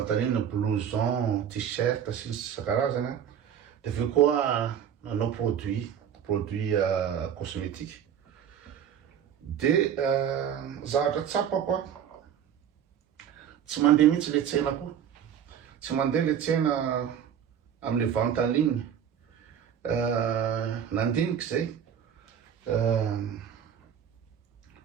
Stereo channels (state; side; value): quieter; left; 8.8 dB